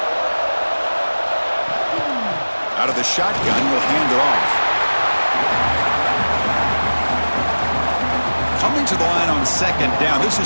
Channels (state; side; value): inverted; both; correlation -1.00